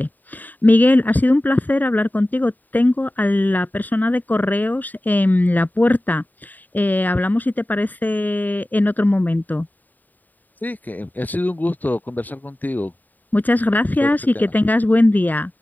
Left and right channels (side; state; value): right; late; 0.086 ms